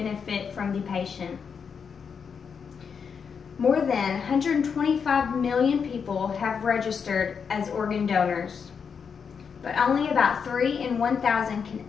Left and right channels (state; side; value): quieter; right; 6.4 dB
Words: from the patient. More than 125 million people have registered as organ donors, but only about 3 in 1,000 can